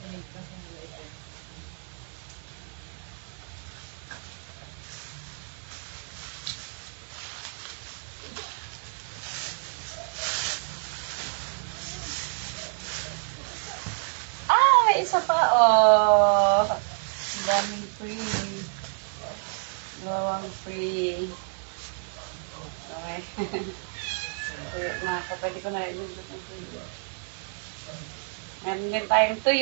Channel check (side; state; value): left; silent; digital silence